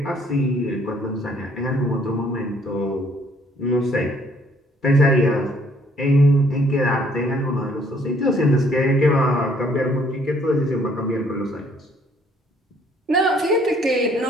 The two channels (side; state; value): both; normal; correlation 0.63